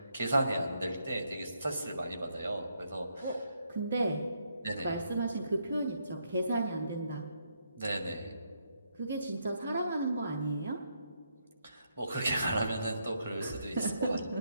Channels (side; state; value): both; inverted; correlation -0.77